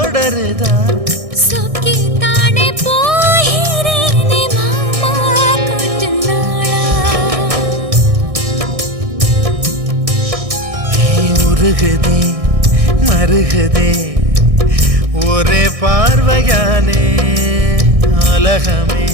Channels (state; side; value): late; left; 1.6 ms